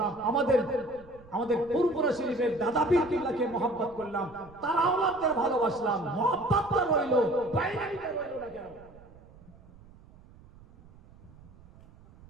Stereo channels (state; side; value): noise; right; rumble, 23 dB below the sound